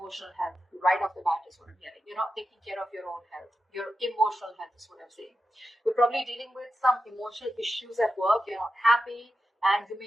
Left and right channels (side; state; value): both; normal; correlation 0.90